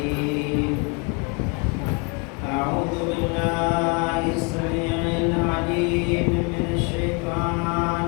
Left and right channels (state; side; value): quieter; right; 32.2 dB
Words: أعوذ بالله السميع العليم من